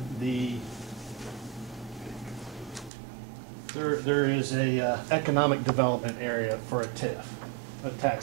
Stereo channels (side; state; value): left; drops out; at 2.9 s